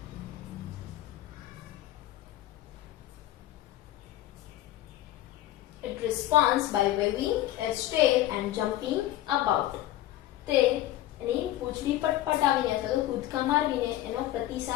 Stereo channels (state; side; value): quieter; right; 14.3 dB